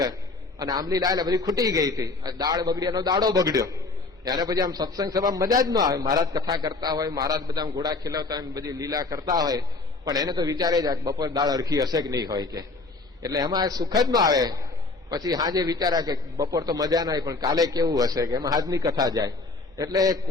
અને આંબલી લાયેલા બધી ખૂટી ગઈ હતી, દાળ બગડી, એનો દાડો બગડ્યો. એને પછી આમ સત્સંગ સભા મજા જ ન આવે. મહારાજ કથા કરતા હોય, મહારાજ બધા ઘોડા ખીલવતા હોય, બધી લીલા કરતા હોય, પણ એને તો વિચારે જ બપોર દાળ અરખી હશે કે નહીં હોય કે, એટલે એમાં સુખ જ ન આવે. પછી હાજે વિચાર્યા કે બપોર તો મજા ના આવી, પણ કાલે કેવું હશે, કે એમાં હાજની કથા જાય. એટલે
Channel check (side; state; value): right; quieter; 3.5 dB